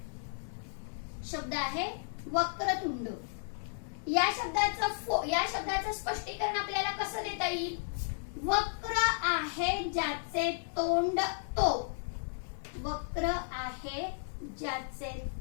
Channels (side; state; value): right; silent; 55 dB below the other